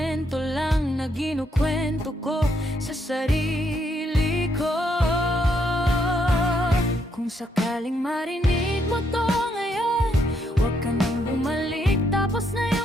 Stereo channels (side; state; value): both; normal; correlation 0.75